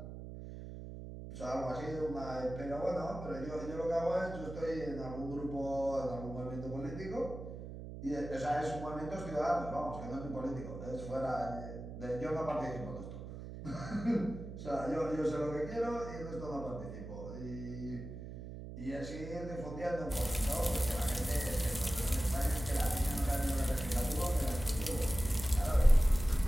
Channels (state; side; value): noise; right; hum, 10 dB below the sound